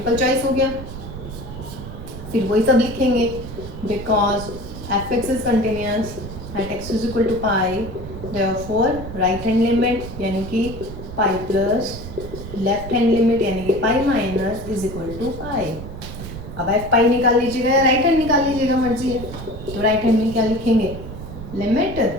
चॉइस हो गया, फिर वही सब लिखेंगे, because f x is continuous at x is equal to pi, therefore right hand limit यानी कि pi plus left hand limit यानी कि pi minus is equal to pi. अब एफ पाई निकाल लीजिएगा या राइट हैंड निकाल लीजिएगा, मर्जी है, तो राइट हैंड में क्या लिखेंगे, limit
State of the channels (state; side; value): noise; right; rumble, 10 dB below the sound